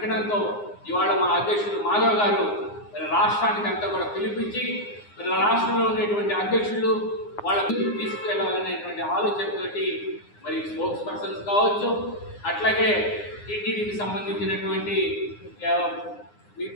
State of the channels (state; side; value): late; right; 9.7 ms